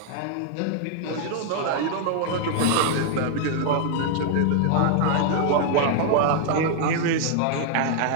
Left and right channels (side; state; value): both; different; correlation 0.00